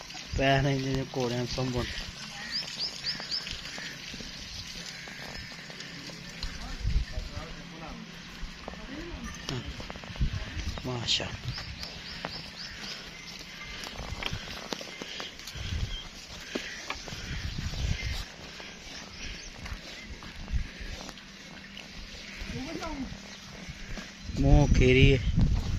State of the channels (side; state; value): both; identical; correlation 1.00